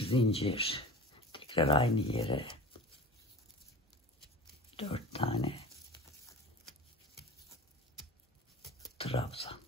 Tekrar aynı yere 4 tane trabzan.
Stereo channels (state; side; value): normal; both; correlation 0.36